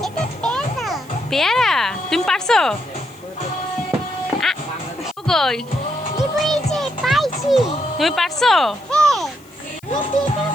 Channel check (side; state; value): left; noise; hiss, 28 dB below the sound